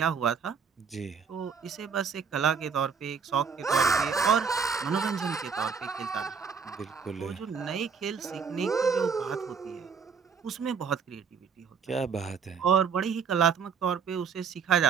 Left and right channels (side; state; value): left; quieter; 6.1 dB